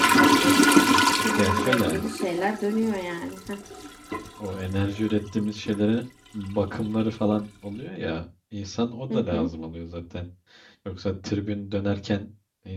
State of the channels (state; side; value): identical; both; correlation 1.00